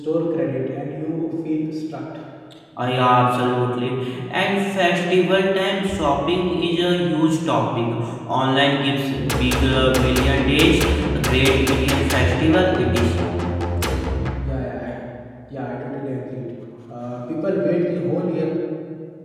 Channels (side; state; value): both; identical; correlation 1.00